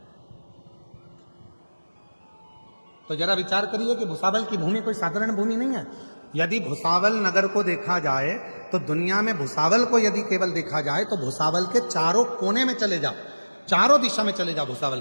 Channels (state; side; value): inverted; both; correlation -1.00